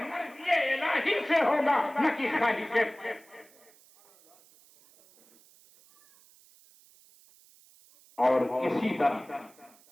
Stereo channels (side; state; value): right; noise; hiss, 28 dB below the sound